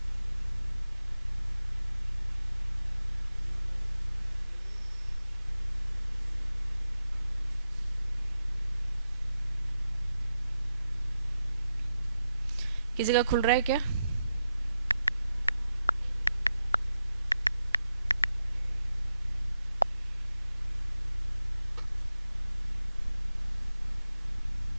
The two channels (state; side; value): inverted; both; correlation -0.87